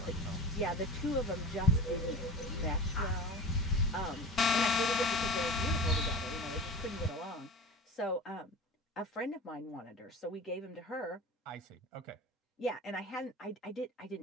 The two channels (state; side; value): normal; both; correlation 0.33